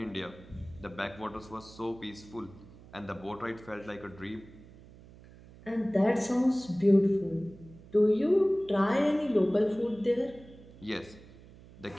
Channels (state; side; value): noise; right; hum, 21 dB below the sound